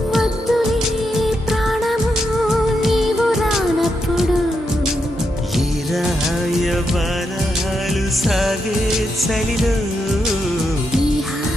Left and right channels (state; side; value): normal; both; correlation 0.83